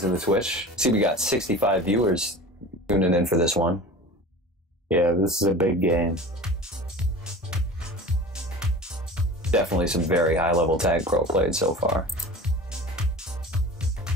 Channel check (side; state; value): both; normal; correlation 0.37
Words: in the Twitch? See, we got 65 viewers tuning in for this one. Yeah, this is a big game. Definitely some very high-level tag pro played so far.